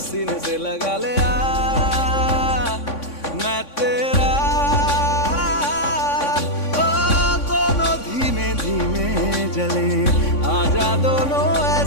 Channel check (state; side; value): late; right; 3.6 ms